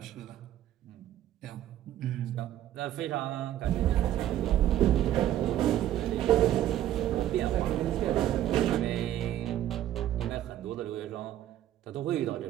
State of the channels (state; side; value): quieter; left; 12.4 dB